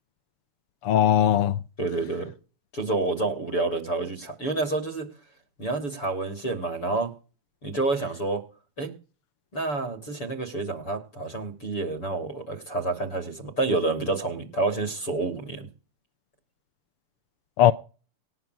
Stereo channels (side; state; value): right; late; 6.9 ms